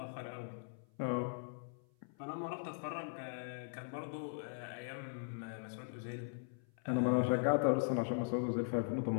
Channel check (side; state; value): right; silent; 51 dB below the other